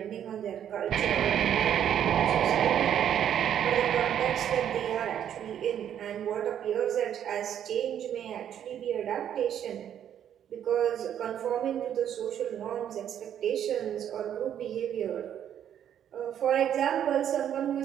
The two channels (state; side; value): quieter; left; 9.8 dB